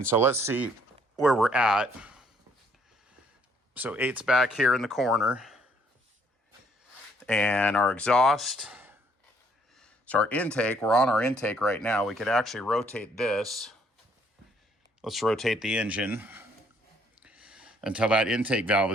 so let's see where we're at. So 8's back here in the corner. And our exhaust So our intake, we're on our intake right now. We could actually rotate this. Let's rotate the engine until that intake valve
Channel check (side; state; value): both; normal; correlation 0.65